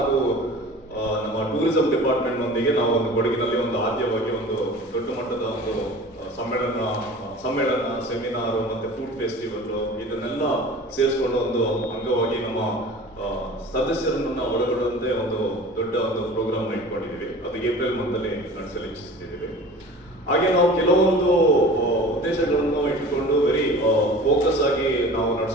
ನಮ್ಮ ಟೂರಿಸಂ ಡಿಪಾರ್ಟ್ಮೆಂಟ್ ನೊಂದಿಗೆ ನಾವು ಒಂದು ಕೊಡಗಿನಲ್ಲಿ ಒಂದು ಆದ್ಯವಾಗಿ ಒಂದು ದೊಡ್ಡ ಮಟ್ಟದ ಒಂದು ಸಮ್ಮೇಳನ, ಸೆಮಿನಾರ್ ಮತ್ತೆ ಫುಡ್ ಫೆಸ್ಟಿವಲ್ ಇದನ್ನೆಲ್ಲ ಸೇರಿಸಿಕೊಂಡು ಒಂದು ಅಂಗವಾಗಿ ನಮ್ಮ ಸದಸ್ಯರನ್ನ ಒಳಗೊಳ್ಳುವಂತೆ ಒಂದು ದೊಡ್ಡ ಒಂದು ಪ್ರೋಗ್ರಾಮ್ ಇಟ್ಕೊಂಡಿದ್ದೀವಿ. ಅದು ಏಪ್ರಿಲ್ ಮಂತಲ್ಲಿ ನಡೆಸಲು ಇಚ್ಛಿಸ್ತಿದ್ದೀವಿ. ಹಾಗೆ ನಾವು ಕೆಲವೊಂದು ಉದ್ದೇಶಗಳನ್ನು ಇಟ್ಕೊಂಡು ವೆರಿ ಫೋಕಸ್ ಆಗಿ ನಾವು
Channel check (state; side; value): normal; both; correlation 0.40